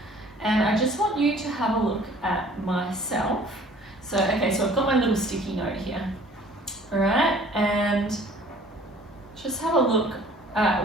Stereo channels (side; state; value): both; normal; correlation 0.52